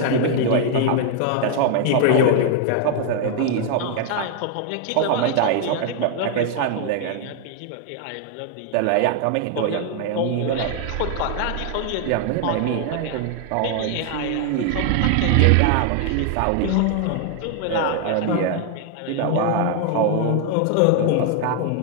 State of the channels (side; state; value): both; different; correlation 0.00